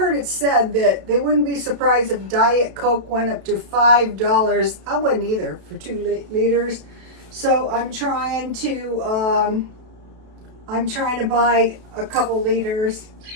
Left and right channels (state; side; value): late; left; 32 ms